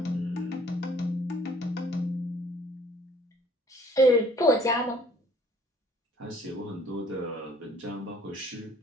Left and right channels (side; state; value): both; normal; correlation 0.57